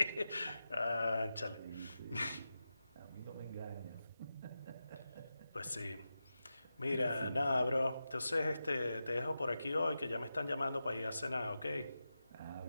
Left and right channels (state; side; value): inverted; both; correlation -0.91